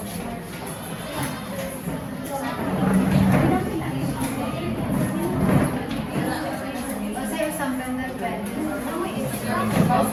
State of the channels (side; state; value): both; identical; correlation 1.00